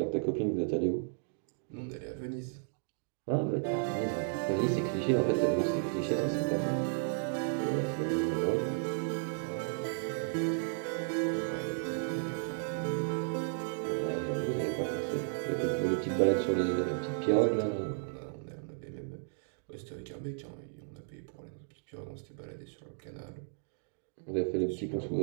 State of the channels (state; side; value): silent; left; digital silence